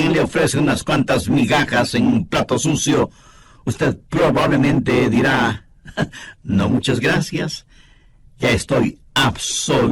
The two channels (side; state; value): both; identical; correlation 1.00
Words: y le ofrece unas cuantas migajas en un plato sucio, usted probablemente dirá: no, muchas gracias, ya estoy